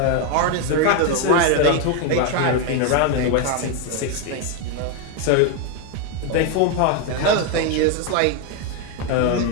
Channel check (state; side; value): different; both; correlation 0.01